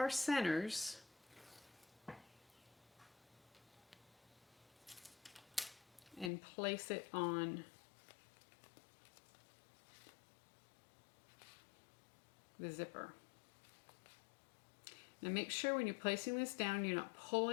centers, and place it on the zipper. Now make sure when you're placing this down, you're not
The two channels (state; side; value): drops out; right; at 6.3 s